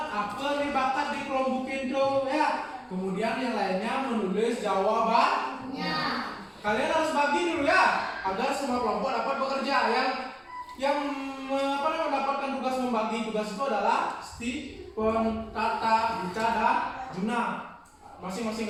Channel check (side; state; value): both; identical; correlation 1.00